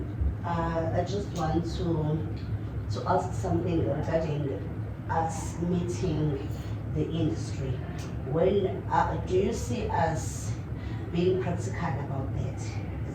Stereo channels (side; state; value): both; identical; correlation 1.00